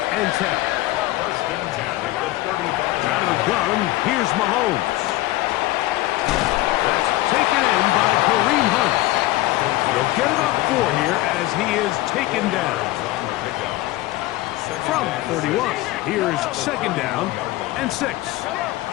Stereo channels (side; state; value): right; quieter; 17.6 dB